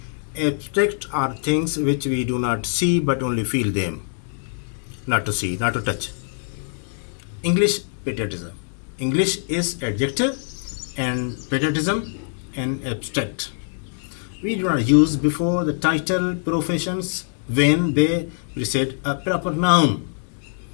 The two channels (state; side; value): silent; right; digital silence